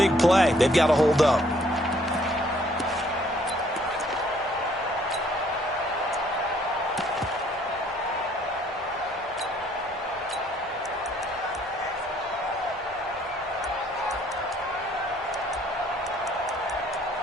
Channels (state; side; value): normal; both; correlation 0.63